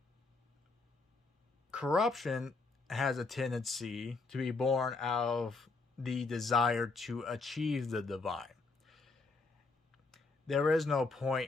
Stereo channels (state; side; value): quieter; right; 3.8 dB